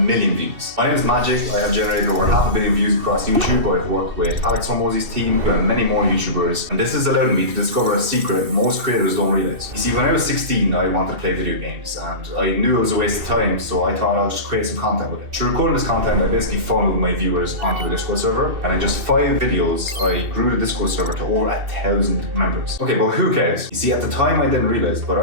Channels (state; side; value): late; left; 2.6 ms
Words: million views. My name is Magic. I have generated over 500 million views across YouTube. I've worked with Alex Hormozi's team and many more YouTubers, and this has allowed me to discover a secret most creators don't realize. You see, when I was 16, I wanted to play video games, and I knew it was a waste of time, so I thought I'll just create some content with it. Through recording this content, I basically funneled my viewers onto a Discord server, and in just 5 videos, I grew the Discord server to over 1,000 members. Okay, but who cares? You see, at the time I didn't realize, but